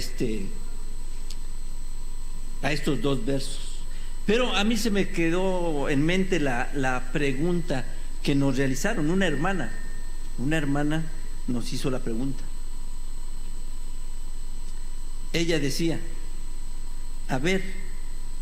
dos versos. Pero a mí se me quedó en mente la pregunta que nos realizaron. Una hermana nos hizo la pregunta. Ella decía, a ver,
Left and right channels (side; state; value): both; identical; correlation 1.00